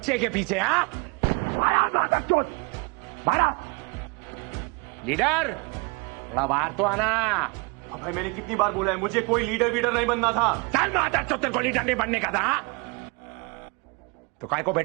के पीछे। हाँ माधर चौथ बारा लीडर थोड़ा बाहर तो आना। भाई मैंने कितनी बार बोला है, मुझे कोई लीडर वीडर नहीं बनना था। चल माधर चौथ तेरे को लीडर नहीं बनने का था। तो काय को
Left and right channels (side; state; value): left; quieter; 30.5 dB